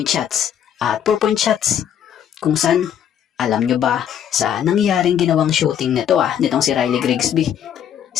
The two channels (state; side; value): quieter; right; 9.5 dB